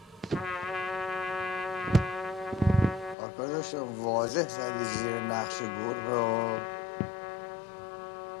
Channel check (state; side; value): drops out; right; at 3.2 s